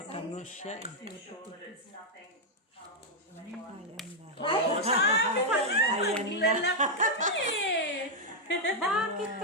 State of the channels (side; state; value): both; normal; correlation -0.01